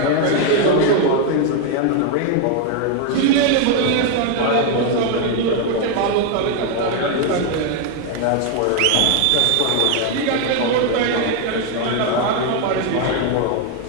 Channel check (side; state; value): both; different; correlation 0.01